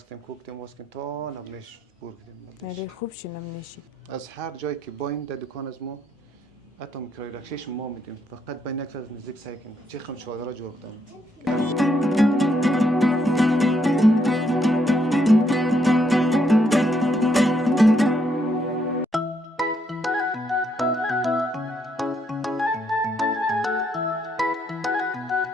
کردیم تا نبنش بور کردیم. نری خوب شی نمیشی. از هر جایی که با این دکان از ما حتی میکروی رکشش ما میدیم فقط بین یک از نزدیک سعی کنیم چه خم چادر جور کردن.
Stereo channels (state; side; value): normal; both; correlation 0.74